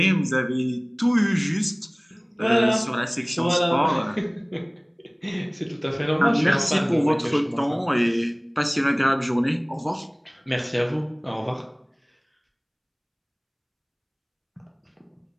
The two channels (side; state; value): both; identical; correlation 1.00